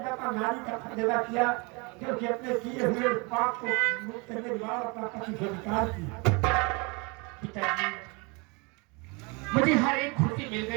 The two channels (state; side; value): quieter; left; 29.7 dB